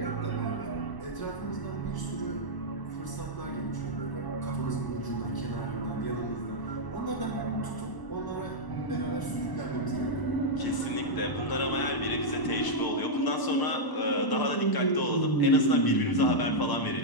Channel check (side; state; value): right; late; 1.0 ms